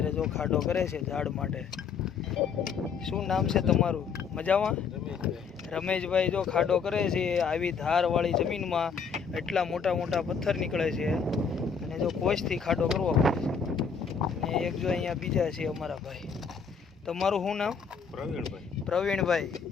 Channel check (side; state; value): right; quieter; 6.0 dB